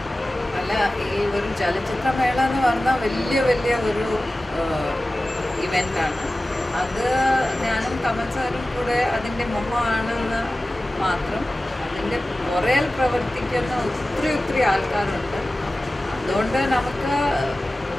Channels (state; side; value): normal; both; correlation 0.96